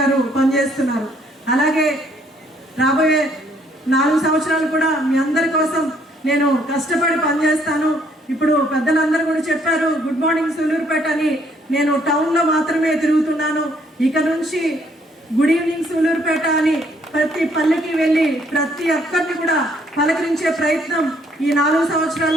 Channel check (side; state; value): both; normal; correlation 0.66